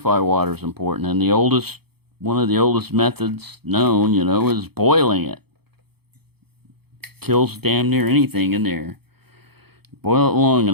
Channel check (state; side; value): late; left; 0.97 ms